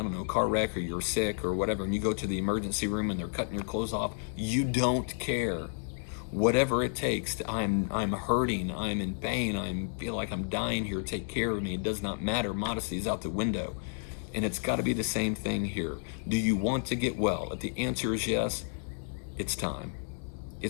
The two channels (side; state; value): right; silent; digital silence